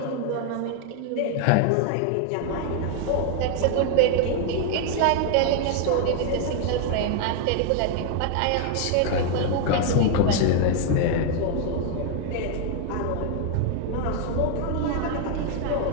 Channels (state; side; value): different; both; correlation 0.00